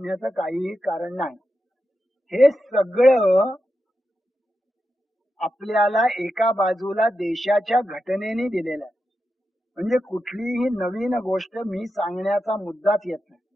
काहीही कारण नाही. हे सगळं आपल्याला एका बाजूला देशाच्या घटनेने दिलेला आहे. म्हणजे कुठलीही नवीन गोष्ट मी सांगण्याचा मुद्दाच येत नाही.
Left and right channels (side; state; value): both; normal; correlation 0.89